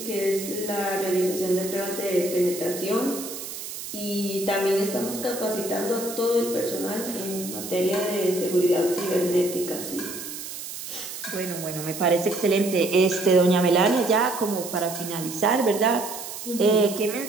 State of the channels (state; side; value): noise; right; hiss, 9 dB below the sound